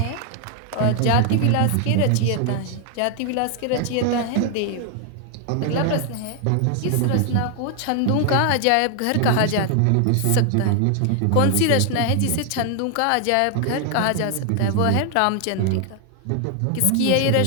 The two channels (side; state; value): both; different; correlation 0.00